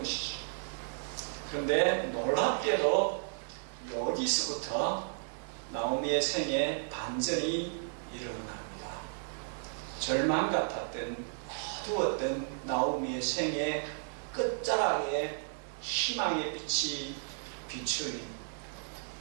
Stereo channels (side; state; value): left; silent; 55 dB below the other